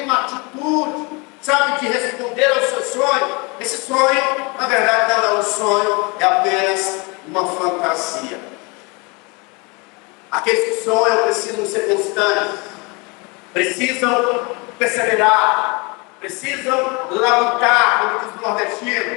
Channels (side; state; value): right; quieter; 29.0 dB